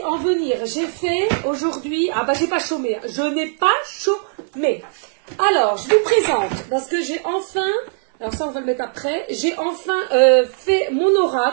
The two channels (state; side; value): silent; left; digital silence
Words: en venir, j'ai fait aujourd'hui, j'ai pas chômé, je n'ai pas chômé. Alors, je vous présente, parce que j'ai enfin, alors ça on va le mettre après, j'ai enfin fait mon